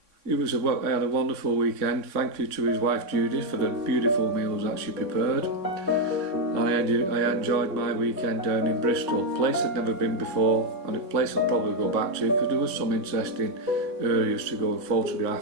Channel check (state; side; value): late; left; 3.6 ms